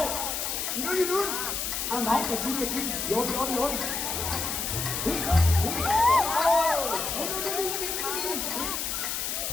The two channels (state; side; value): noise; left; hiss, 2 dB below the sound